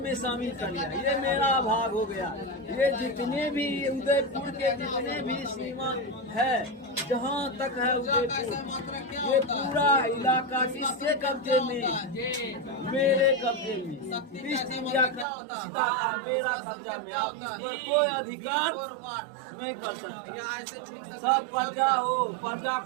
में शामिल कर लिया। ये मेरा भाग हो गया। ये जितने भी उदयपुर के जितने भी सीमा है जहाँ तक है उदयपुर, ये पूरा इलाका किसके कब्जे में? मेरे कब्जे में। ईस्ट इंडिया कंपनी का मेरा कब्जा में। आप इस पर कोई अधिकार नहीं कर सकते। सब प्रजा हो, प्रजा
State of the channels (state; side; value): drops out; left; at 15.2 s